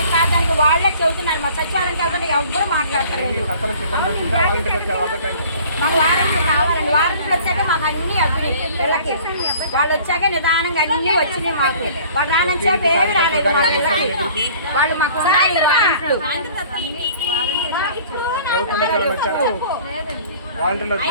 కాదానికి వాళ్ళే చెబుతున్నారు. మా సచివాలయం వెళ్తే ఎవ్వరూ మాట్లాడతలేదు. మాకు వారంటీలు కావాలండి. వారంటీలు వచ్చాక మాకు అన్ని అవ్వినాయి పిల్లకి. వాళ్ళు వచ్చాక నిదానంగా అన్ని వచ్చినాయి మాకు. వాళ్ళు రానొచ్చాక ఏమి రాలేదు మా పిల్లకి. వాళ్ళు మాకు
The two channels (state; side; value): inverted; both; correlation -0.50